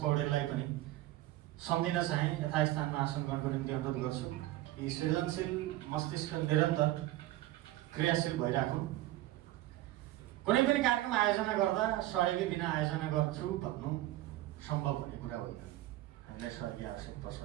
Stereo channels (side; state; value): left; quieter; 15.9 dB